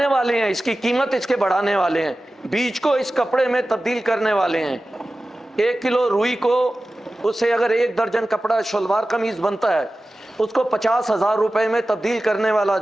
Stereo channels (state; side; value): normal; both; correlation 0.95